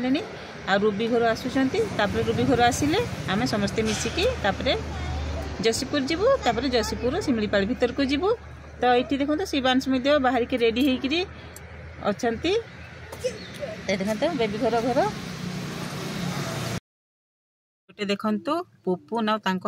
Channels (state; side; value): identical; both; correlation 1.00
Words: आ रूबी घर आसुचंती। तापर रूबी घर आसिले आमे समस्ते मिसिकी तापर जसीपुर जीवु। तापर जसीपुर सिमलीपाल भीतर को जीवु। तो एठी देखो तो शिवांश मध्ये बाहरी के रेडी हेकी अछंती। देखो बेबी घर गोटे देखु पुपुन आ